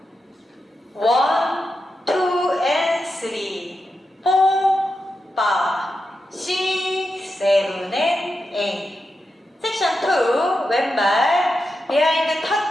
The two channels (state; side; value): normal; both; correlation 0.88